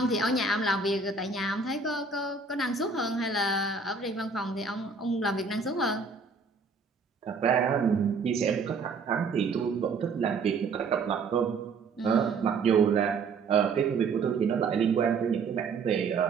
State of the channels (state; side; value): quieter; left; 4.6 dB